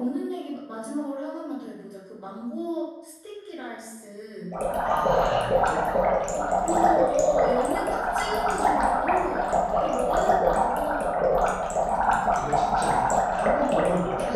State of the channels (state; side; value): identical; both; correlation 1.00